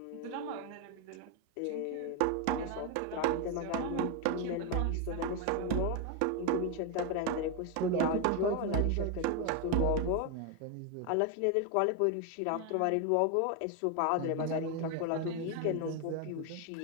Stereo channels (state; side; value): different; both; correlation 0.01